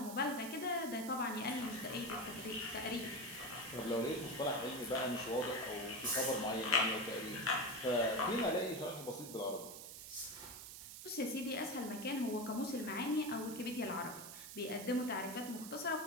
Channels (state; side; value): noise; right; hiss, 11 dB below the sound